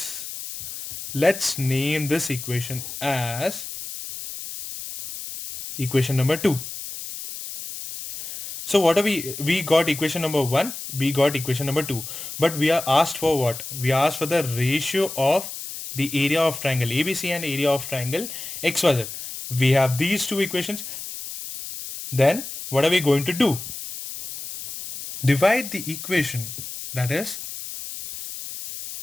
Let's name this equation as equation number 2. So what are we got equation number 1, we got equation number 2, but we are asked for what? We are asked for the ratio of the area of triangle ABC and area of triangle XYZ. We have these two equations. Then what are we going to do? Divide the equation, that is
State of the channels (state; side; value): noise; left; hiss, 9 dB below the sound